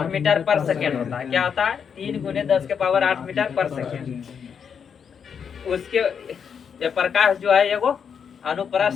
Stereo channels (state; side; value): quieter; right; 7.1 dB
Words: मीटर पर सेकेंड होता है। क्या होता है, 3 × 10⁸ मीटर पर सेकेंड। उसके ये प्रकाश जो है एगो